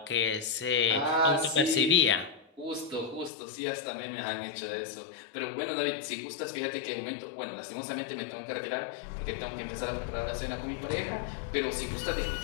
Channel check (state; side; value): drops out; right; at 3.3 s